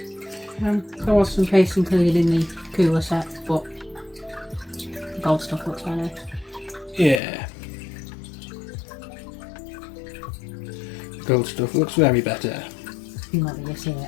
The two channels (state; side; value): drops out; right; at 7.2 s